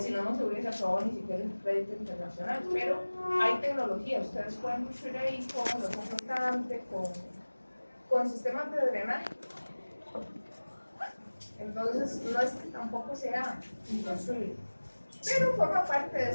no, no se hubiese aprobado ni siquiera el crédito internacional. Pero hay tecnología, ustedes pueden construir ahí con los flotantes, con sistemas de drenaje. Entonces, no es que tampoco sea imposible, pero forma parte de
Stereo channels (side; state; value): both; inverted; correlation -1.00